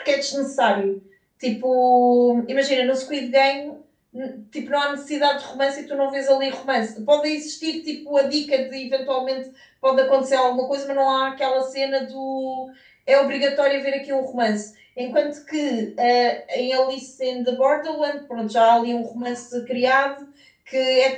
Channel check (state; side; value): identical; both; correlation 1.00